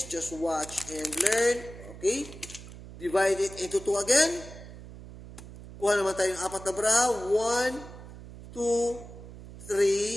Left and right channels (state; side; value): noise; right; hum, 15 dB below the sound